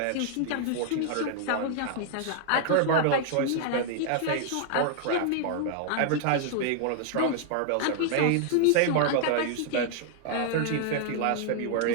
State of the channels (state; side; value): different; both; correlation 0.00